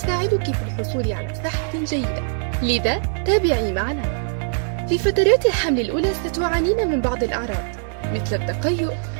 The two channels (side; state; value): left; silent; digital silence